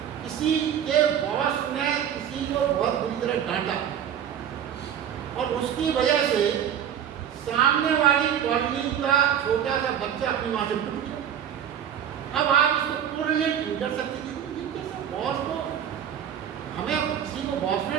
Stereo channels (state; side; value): quieter; left; 9.3 dB